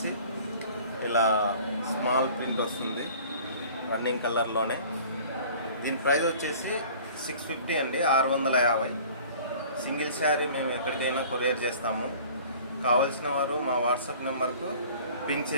ఇలా స్మాల్ ప్రింట్ వస్తుంది రన్నింగ్ కలర్లోనే. దీని ప్రైస్ వచ్చేసి 650 అండి, 650. సింగిల్ శారీ మేము ఎక్కడికైనా కొరియర్ చేస్తాము. కావాల్సిన వారు మా వాట్సాప్ నెంబర్కు పింక్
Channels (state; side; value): inverted; both; correlation -0.48